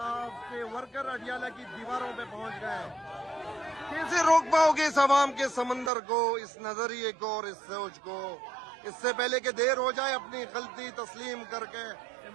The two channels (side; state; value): left; drops out; at 5.9 s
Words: के वर्कर अडियाला की दीवारों पे पहुंच गए। कैसे रोक पाओगे इस अवाम के समंदर को, इस नजरिए को और इस सोच को? इससे पहले कि देर हो जाए, अपनी गलती तस्लीम करके